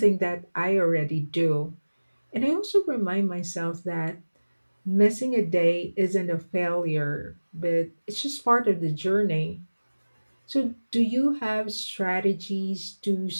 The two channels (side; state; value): both; inverted; correlation -1.00